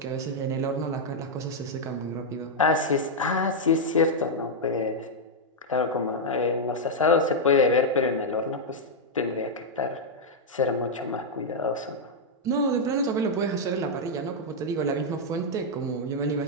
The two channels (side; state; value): both; normal; correlation -0.03